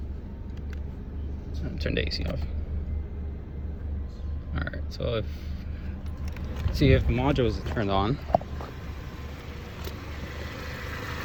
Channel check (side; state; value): both; identical; correlation 1.00